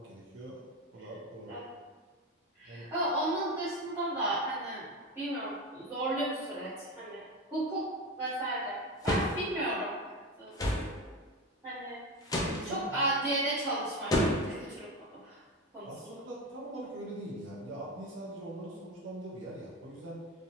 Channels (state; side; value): normal; both; correlation 0.21